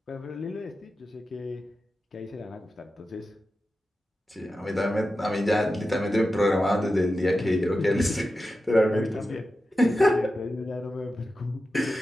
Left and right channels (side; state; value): both; normal; correlation 0.92